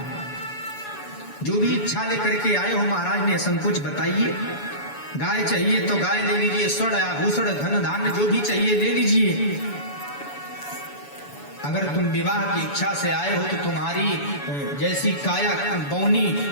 जो भी इच्छा लेकर के आए हो महाराज ने संकोच बताइए। गाय चाहिए तो गाय ले लीजिए, स्वर्ण आभूषण धन धान्य जो भी चाहिए ले लीजिए। अगर तुम विवाह की इच्छा से आए हो तो तुम्हारी जैसी काया बौनी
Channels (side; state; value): right; late; 7.0 ms